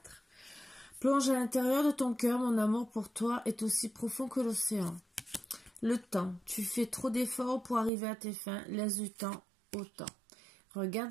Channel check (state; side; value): drops out; left; at 7.9 s